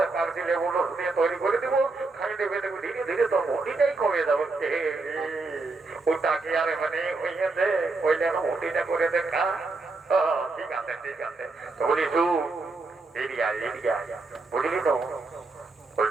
কার দিলে বলো দিয়ে তৈরি করে দেবো, খাই দেবে দেবো, ধীরে ধীরে তোর ভুটিটাই কমে যাবে। ওটা কি আর মানে হইয়াছে, ওই যেন ভুটিটা করে দেখা। ঠিক আছে তো বলি এরিয়া বুঝলি তো?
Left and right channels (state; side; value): quieter; left; 3.6 dB